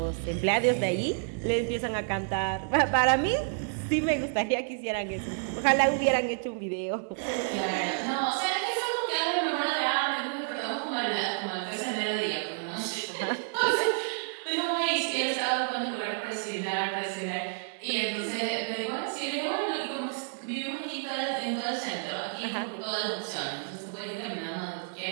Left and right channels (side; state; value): left; silent; 58 dB below the other